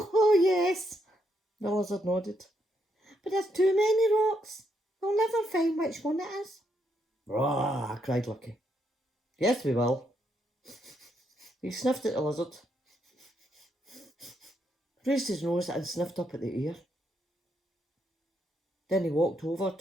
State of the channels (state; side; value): normal; both; correlation 0.77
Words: yes, the lizard nodded. But there's too many rocks. We'll never find which one it is. Rah, cried Lucky. Yes, we will. He sniffed at the lizard, raised his nose and sniffed up at the air. Then he walked over